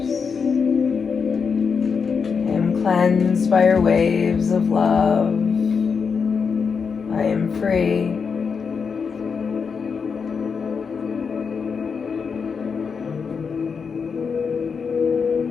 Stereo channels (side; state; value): right; quieter; 5.8 dB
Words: Cleansed by your waves of love. I am free.